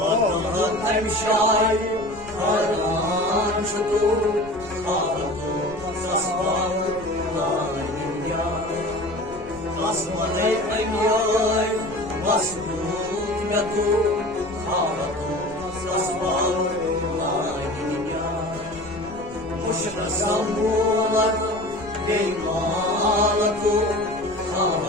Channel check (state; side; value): noise; left; rumble, 19 dB below the sound